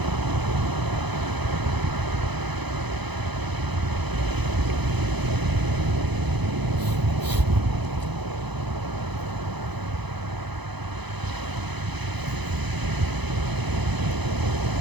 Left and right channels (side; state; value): left; late; 0.99 ms